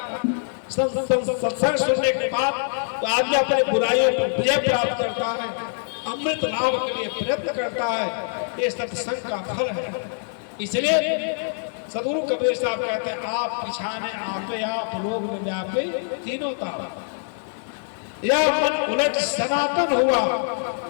सत्संग सुनने के बाद तो आदमी अपने बुराइयों पर विजय प्राप्त करता है, अमृत लाभ के लिए प्रयत्न करता है, ये सत्संग का फल है। इसलिए सदगुरु कबीर साहब कहते हैं आप पिछाने आपे आप लोग में व्यापे तीनों ताप, या मन उलट सनातन हुआ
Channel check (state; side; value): silent; right; 62 dB below the other